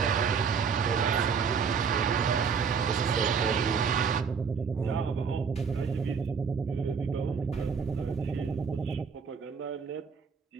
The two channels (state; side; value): quieter; left; 6.0 dB